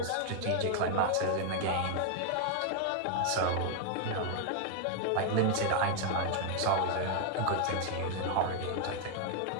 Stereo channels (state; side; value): different; both; correlation 0.00